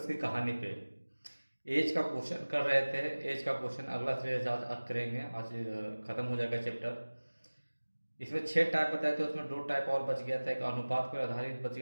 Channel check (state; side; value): inverted; both; correlation -1.00